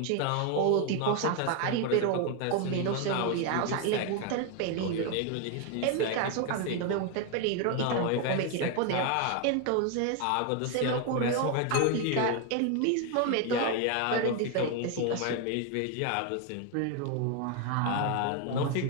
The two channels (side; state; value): both; different; correlation 0.01